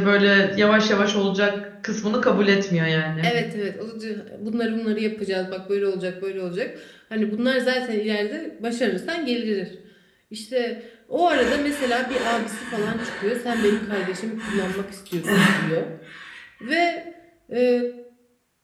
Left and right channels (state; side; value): identical; both; correlation 1.00